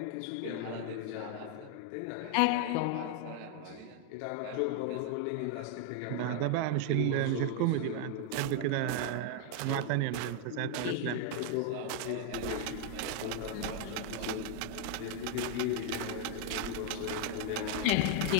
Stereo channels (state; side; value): different; both; correlation 0.00